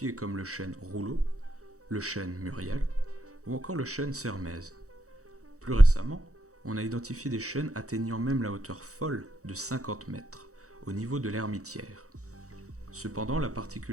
comme le chêne Rouleau, le chêne Muriel ou encore le chêne Sermaize. Plus récemment, on a identifié des chênes atteignant même la hauteur folle de 50 mètres, au niveau de l'Hermitière. Cependant, la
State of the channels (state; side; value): late; left; 0.65 ms